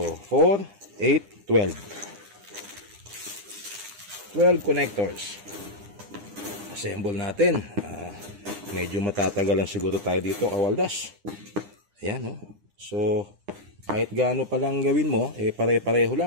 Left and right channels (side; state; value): left; late; 9.9 ms